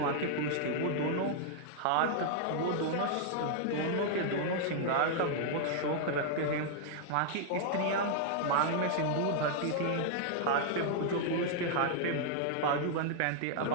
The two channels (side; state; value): both; different; correlation -0.01